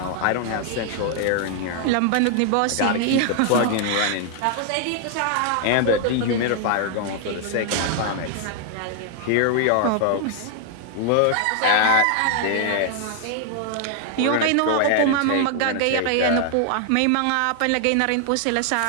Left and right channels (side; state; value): both; different; correlation 0.00